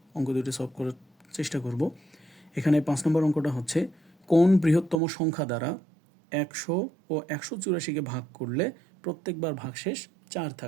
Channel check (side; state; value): left; drops out; at 5.0 s